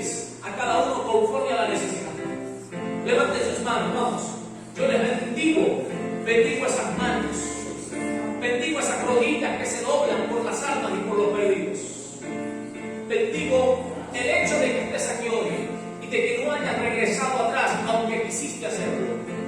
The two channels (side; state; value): both; identical; correlation 1.00